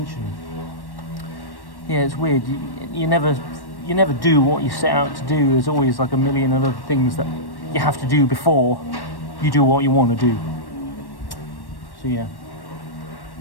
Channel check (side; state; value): right; late; 1.1 ms